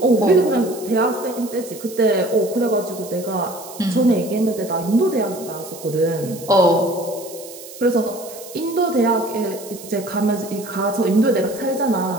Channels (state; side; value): noise; right; hiss, 16 dB below the sound